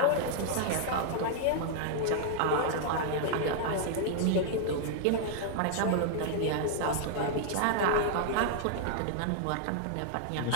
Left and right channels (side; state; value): both; different; correlation -0.01